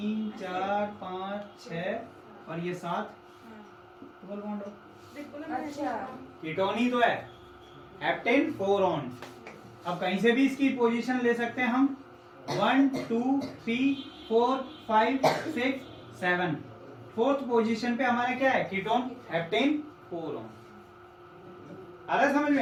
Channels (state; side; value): identical; both; correlation 1.00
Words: 4 5 6 और ये 7 डबल बॉन्ड हो। अच्छा कीटोन ही तो है, हेप्टेन 4 ऑन। अब कहीं से भी इसकी पोजीशन ले सकते हैं हम, 1 2 3 4 5 6 7। फोर्थ पोजीशन पे हमारा क्या है, कीटोन हेप्टेन 4 ऑन। आ रहा है समझ